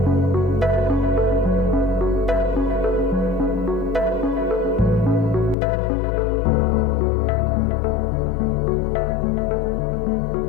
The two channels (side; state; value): right; drops out; at 5.6 s